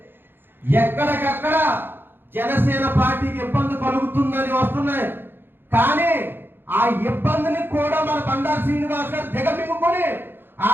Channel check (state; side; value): late; left; 0.10 ms